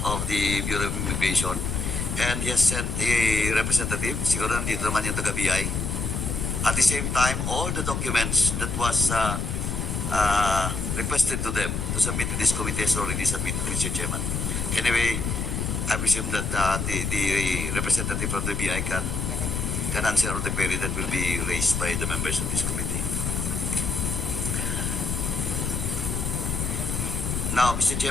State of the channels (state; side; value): noise; left; rumble, 2 dB below the sound